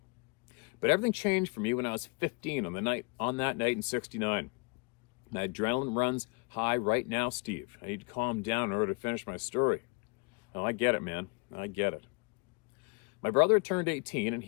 But everything changed for me when I was 15 on that night in '69. My adrenaline runs high right now, Steve. I need to calm down in order to finish my story. Oh, I get it, man. I get it. My brother had turned 18 and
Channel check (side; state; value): right; quieter; 31.9 dB